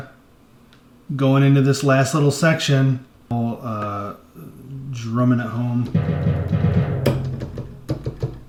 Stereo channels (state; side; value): identical; both; correlation 1.00